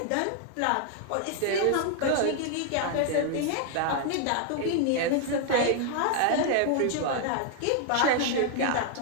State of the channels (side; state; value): both; different; correlation 0.00